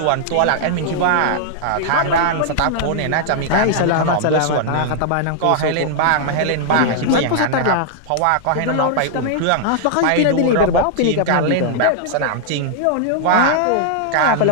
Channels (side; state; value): both; different; correlation -0.01